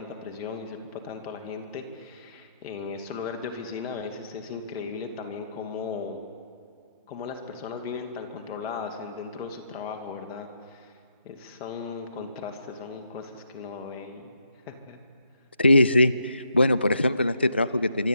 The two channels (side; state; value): both; inverted; correlation -0.76